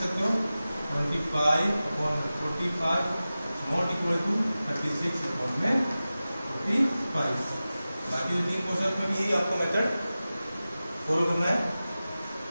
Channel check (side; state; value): both; inverted; correlation -0.95